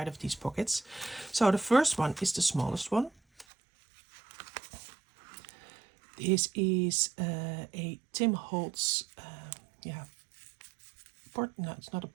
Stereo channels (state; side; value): drops out; left; at 3.5 s